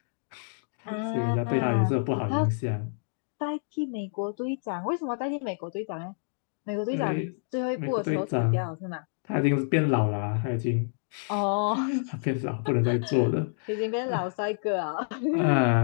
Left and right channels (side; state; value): right; silent; digital silence